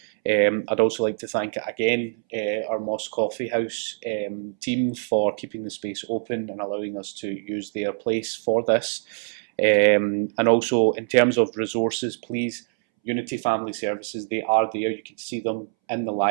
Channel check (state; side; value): silent; left; 62 dB below the other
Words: I'd also like to thank again our Mosque Coffee House team for keeping the space open and allowing us to use their place for this. And also in terms of resources, please, Unity Family Services, they are there. You can see them in the